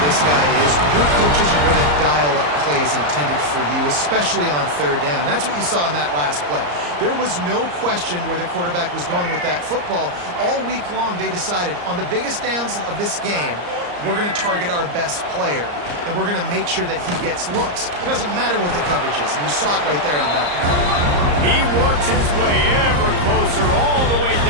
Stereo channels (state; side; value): late; left; 34 ms